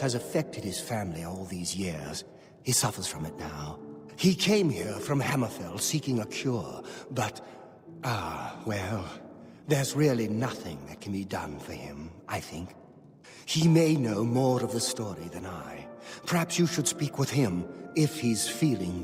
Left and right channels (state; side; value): identical; both; correlation 1.00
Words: affected his family all these years. He suffers from it now. He came here from Hammerfell seeking a cure, but, well, there's really nothing that can be done for him, I think. He may know more of the story than I. Perhaps you should speak with him, if he's feeling